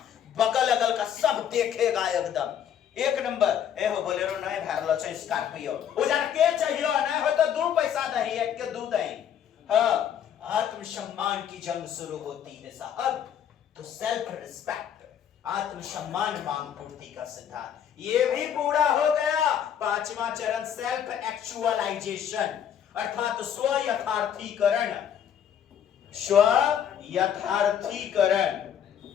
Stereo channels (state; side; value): quieter; right; 9.1 dB